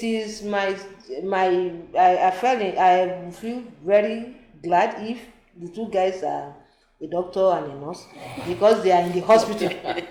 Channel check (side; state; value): both; identical; correlation 1.00